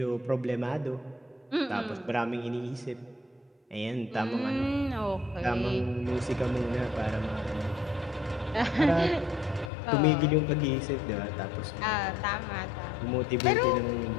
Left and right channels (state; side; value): drops out; right; at 9.7 s